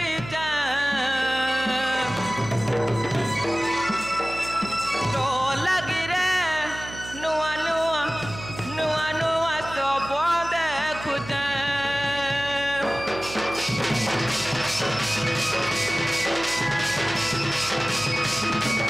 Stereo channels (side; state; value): right; noise; hum, 13 dB below the sound